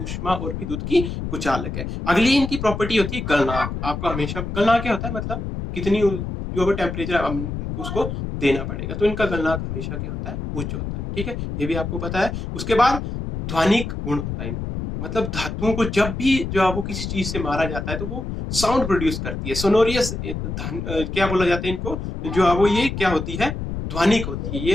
और विद्युत की कुचालक है। अगली इनकी प्रॉपर्टी होती है गलनांक। आपको हमेशा गलनांक क्या होता है, मतलब कितनी जो टेम्परेचर उसको देना पड़ेगा। तो इनका गलनांक हमेशा क्या होता है, उच्च होता है। ठीक है, ये भी आपको पता है। उसके बाद ध्वनिक गुण होता है इनमें। मतलब धातुओं को जब भी जो है वो किसी चीज से मारा जाता है तो वो साउंड प्रोड्यूस करती है, सोनोरियस। क्या बोला जाता है इनको, जो है वो ये क्या होती है, ध्वनिक होती है।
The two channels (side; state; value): left; noise; rumble, 5 dB below the sound